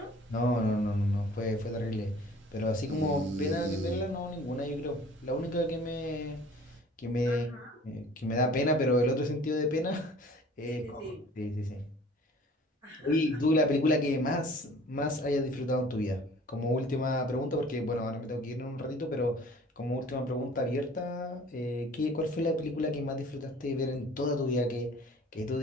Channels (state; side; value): normal; both; correlation 0.49